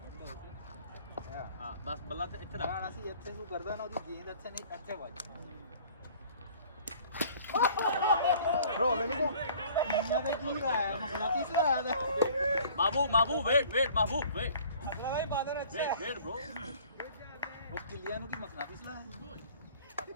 ਹੈ ਹਾਂ ਬਸ ਬੱਲਾ ਤੇ ਇੱਥੇ ਰੱਖ ਰਹਿਣਾ ਸੀ ਇੱਥੇ ਨੂੰ ਕਰਦਾ ਨਾ ਉਹਦੀ ਗੇਂਦ ਇੱਥੇ ਨਹੀਂ ਇੱਥੇ ਵੱਜ bro let me go ਇੰਨਾ ਦਾ ਕੀ ਆਇਆ ਮਸਲਾ ਤੀਸਰਾ ਆਇਆ ਦਾ महबूब वेट महबूब वेट अगला भाई बादल अच्छा है वेट ब्रो ਉਹ ਕਿੱਲਿਆਂ ਨੂੰ ਕੀ ਮਸਲਾ ਤੀਸਰਾ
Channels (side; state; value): both; inverted; correlation -0.51